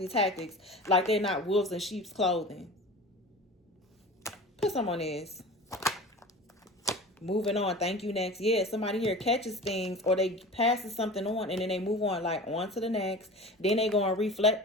tactics like they're not wolves in sheep's clothing. Put some on this. Moving on. Thank you. Next. Yeah, somebody here catches things or they passes something on and then they move on, like on to the next. Then they go and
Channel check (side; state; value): both; normal; correlation 0.36